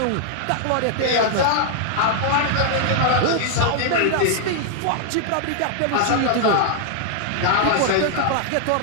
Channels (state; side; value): different; both; correlation -0.01